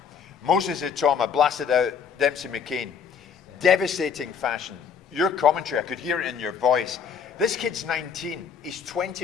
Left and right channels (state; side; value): quieter; right; 6.7 dB